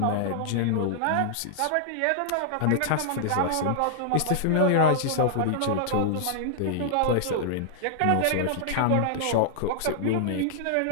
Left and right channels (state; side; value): different; both; correlation -0.01